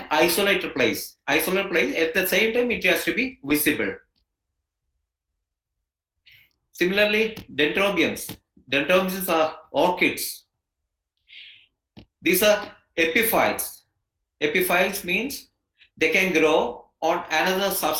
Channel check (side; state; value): both; identical; correlation 1.00